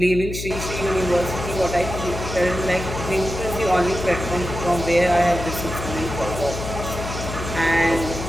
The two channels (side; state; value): left; noise; hum, 7 dB below the sound